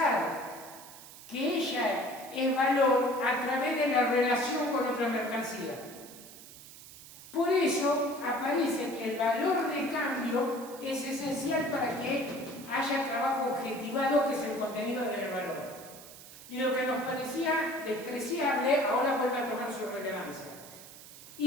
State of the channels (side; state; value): right; noise; hiss, 17 dB below the sound